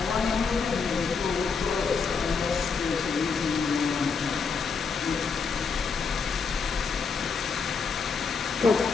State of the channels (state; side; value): quieter; right; 5.3 dB